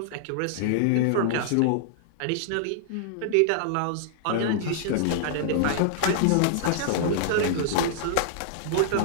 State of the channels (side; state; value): both; different; correlation -0.01